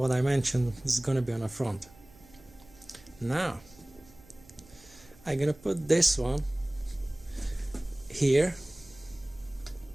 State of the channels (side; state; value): right; noise; hum, 25 dB below the sound